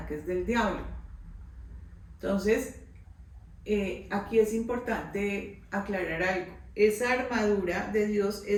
del diablo. Entonces, aquí es importante aclarar algo. Esa armadura de Dios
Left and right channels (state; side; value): identical; both; correlation 1.00